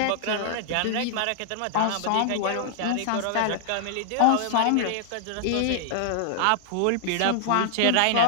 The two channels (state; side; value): different; both; correlation -0.01